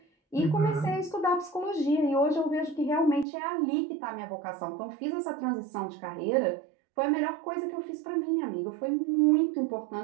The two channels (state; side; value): drops out; left; at 3.2 s